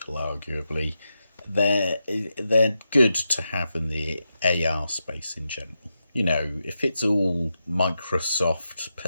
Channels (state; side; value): inverted; both; correlation -0.87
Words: arguably. They're good to have in the AR space in general. You know, if it's all Microsoft,